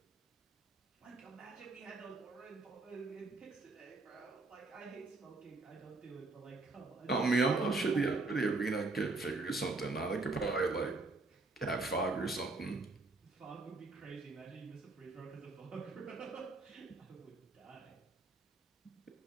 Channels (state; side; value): quieter; left; 3.4 dB